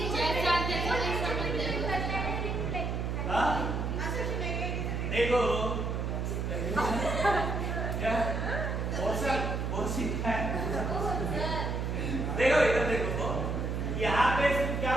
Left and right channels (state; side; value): noise; right; hum, 1 dB below the sound